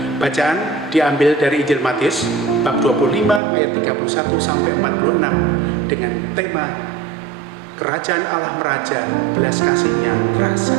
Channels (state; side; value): drops out; left; at 3.4 s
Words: Bacaan diambil dari Injil Matius bab 25 ayat 31 sampai 46 dengan tema Kerajaan Allah meraja, belas kasihnya terasa.